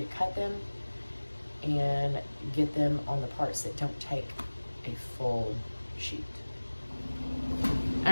to cut them and get them on the parts that don't take a full sheet.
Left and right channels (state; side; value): inverted; both; correlation -1.00